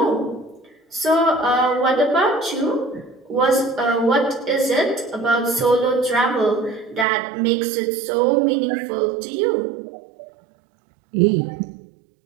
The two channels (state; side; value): drops out; left; at 7.1 s